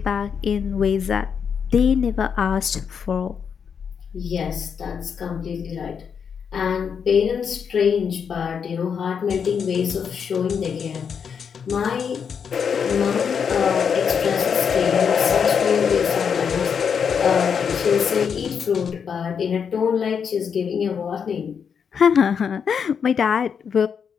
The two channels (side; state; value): right; quieter; 6.9 dB